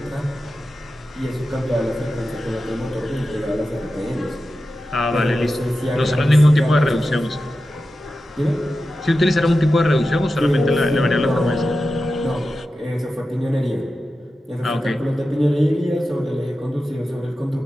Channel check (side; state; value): both; normal; correlation 0.92